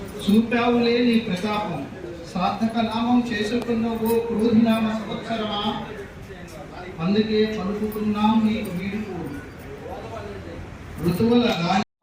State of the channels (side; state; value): both; identical; correlation 1.00